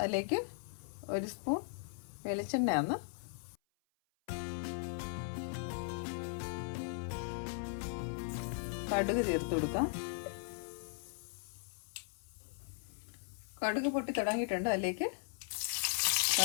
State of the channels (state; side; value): silent; right; 52 dB below the other